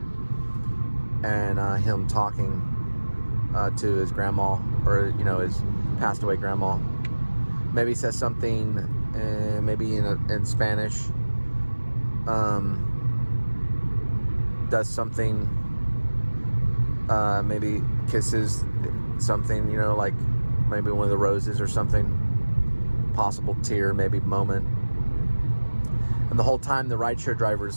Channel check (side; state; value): both; inverted; correlation -1.00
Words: and him talking to his grandma, or his passed away grandma. Maybe he says something, maybe in Spanish. Does something. Maybe kisses something, like maybe one of the roses or something. Possible tear, maybe moment. And the whole time the rideshare